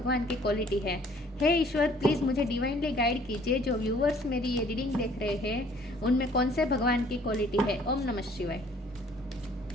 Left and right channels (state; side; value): normal; both; correlation 0.57